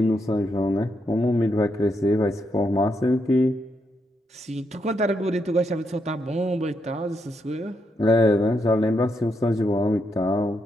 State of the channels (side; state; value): both; normal; correlation 0.80